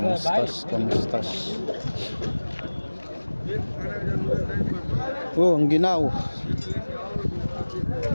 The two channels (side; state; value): both; inverted; correlation -1.00